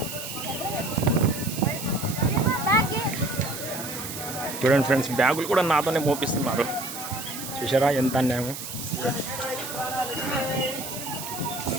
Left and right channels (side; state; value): right; noise; hiss, 8 dB below the sound